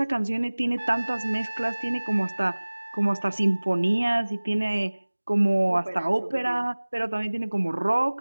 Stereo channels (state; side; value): inverted; both; correlation -1.00